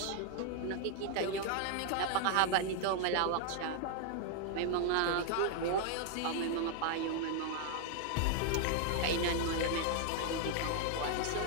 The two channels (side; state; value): both; different; correlation 0.00